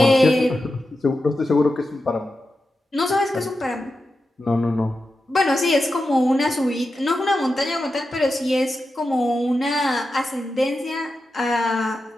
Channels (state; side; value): normal; both; correlation 0.90